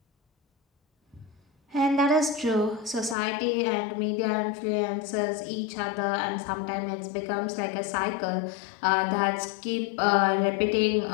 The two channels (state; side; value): drops out; right; at 3.2 s